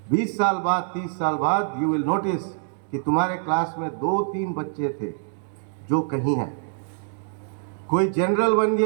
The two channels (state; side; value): silent; left; digital silence